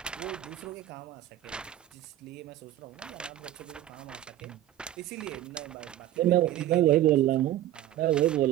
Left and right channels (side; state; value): left; quieter; 13.2 dB